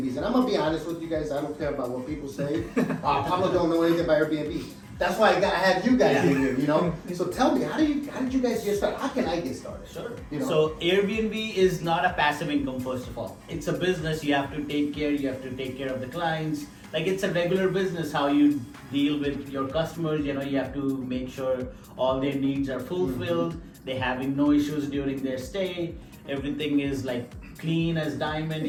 and I'm gonna be honest with you guys. I don't care about what people say. Pablo don't know anything about Airbnb. That's why I have you guys in here. So tell me, how did you guys get started? How can I get started? Sure. You know? So Airbnb is not a passive income, first of all. It's a business. You have to take care. You have to take care of the clients. Like it's a regular business. How you deal with your customers. You have to make sure all their needs are fulfilled. They're having no issues during their stay. Everything is like clean as diamond.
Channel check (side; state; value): both; identical; correlation 1.00